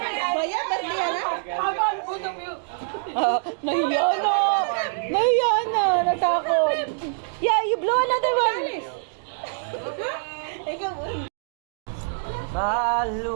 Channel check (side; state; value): left; silent; digital silence